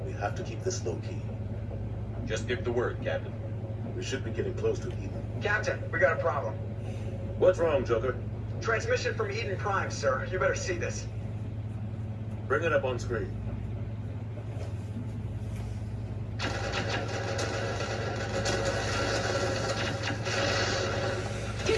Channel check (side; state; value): both; identical; correlation 1.00